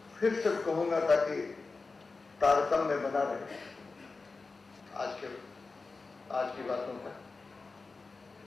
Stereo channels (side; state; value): right; quieter; 4.0 dB